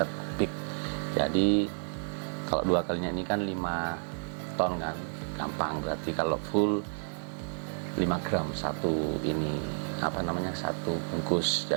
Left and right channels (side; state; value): left; silent; digital silence